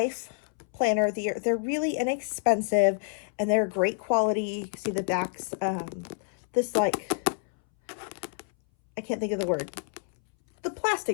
planner. They're really inexpensive, and they're great quality. See the backs, this like, I can't think of the word. The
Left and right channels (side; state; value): right; silent; 59 dB below the other